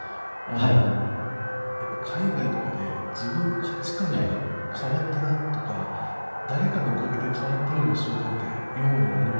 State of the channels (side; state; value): both; inverted; correlation -1.00